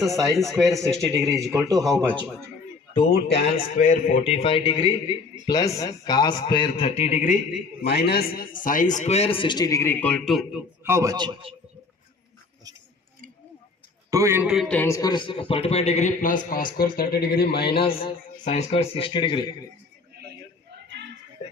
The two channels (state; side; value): quieter; right; 4.2 dB